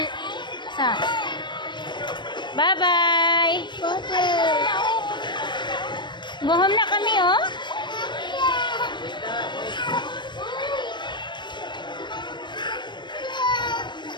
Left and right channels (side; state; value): right; late; 0.22 ms